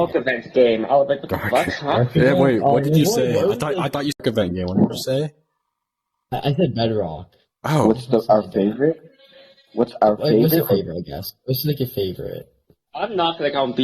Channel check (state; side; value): identical; both; correlation 1.00